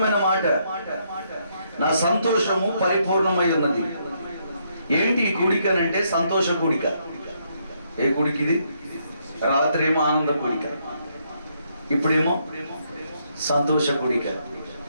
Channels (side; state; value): both; inverted; correlation -0.74